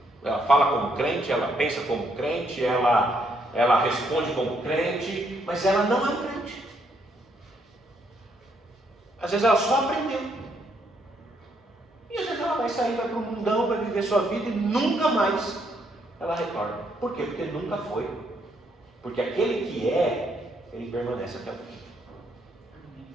Ela fala como crente, ela pensa como crente, ela responde como crente, mas ela não é um crente. Às vezes ela só aprendeu. E às vezes ela vai sair, vai para o mundão, vai viver sua vida e nunca mais ela retorna. Por quê? Porque nunca foi. Porque aquele que é, ele permanece até o fim.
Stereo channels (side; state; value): both; normal; correlation 0.73